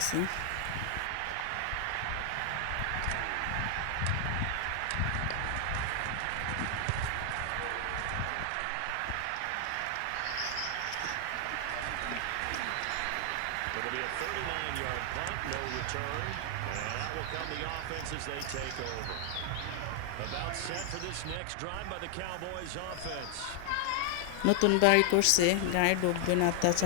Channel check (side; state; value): both; different; correlation 0.00